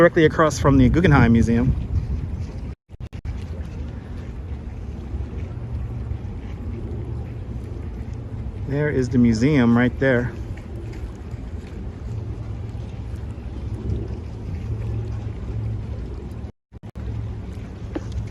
across from the Guggenheim Museum. There is the museum right there.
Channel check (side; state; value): both; identical; correlation 1.00